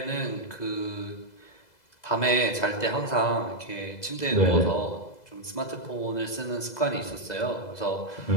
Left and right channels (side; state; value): right; late; 2.0 ms